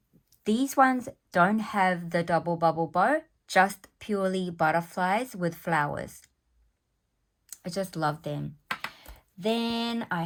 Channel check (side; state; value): both; identical; correlation 1.00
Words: These ones don't have the double bubble bow, just purely butterflies with flowers. I just love them. Then I